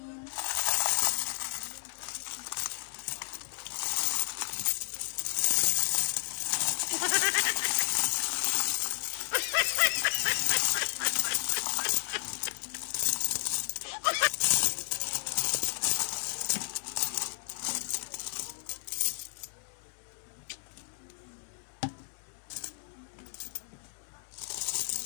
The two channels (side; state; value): right; silent; digital silence